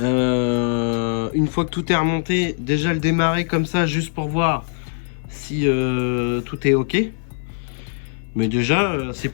fois que tout est remonté, déjà le démarrer comme ça juste pour voir si tout est ok. Mais déjà c'est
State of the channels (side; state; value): right; silent; 57 dB below the other